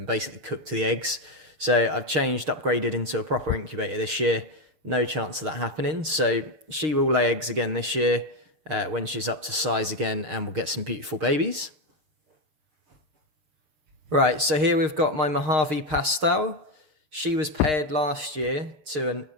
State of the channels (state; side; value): late; left; 6.5 ms